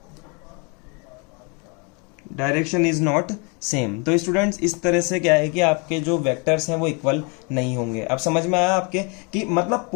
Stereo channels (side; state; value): right; quieter; 32.8 dB